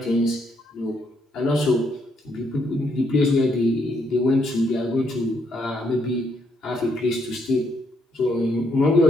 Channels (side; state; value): both; normal; correlation 0.74